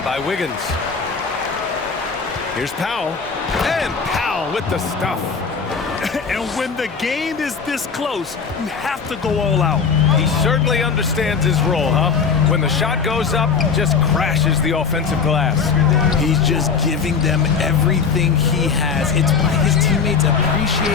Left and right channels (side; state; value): right; quieter; 5.6 dB